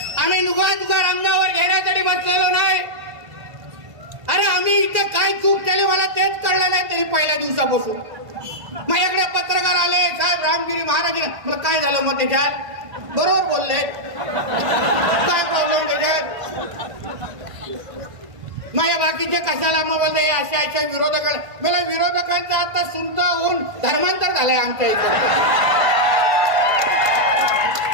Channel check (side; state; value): left; late; 1.5 ms